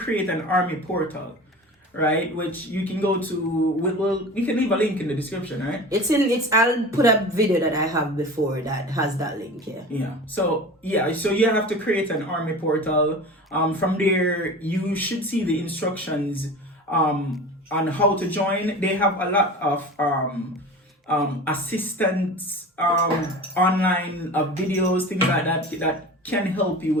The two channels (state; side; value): normal; both; correlation 0.35